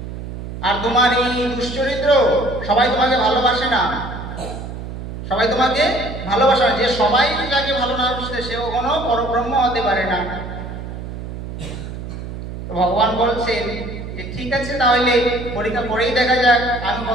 আর তোমার এই দুশ্চরিত্র, সবাই তোমাকে ভালোবাসে না, সবাই তোমাকে ভালোবাসে না। যে সবাই যাকে ভালো না বাসে সে কখনো পরব্রহ্ম হতে পারে না। ভগবান বলছেন যে ঠিক আছে, তাহলে পরীক্ষা করেই দেখা যাক আমি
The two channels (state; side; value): noise; right; hum, 8 dB below the sound